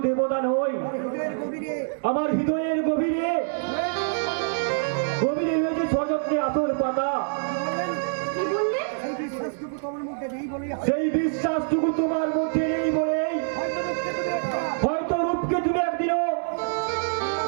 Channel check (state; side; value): silent; left; digital silence